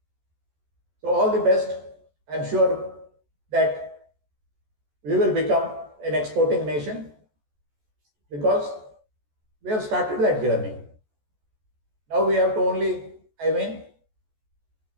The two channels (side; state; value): left; late; 14 ms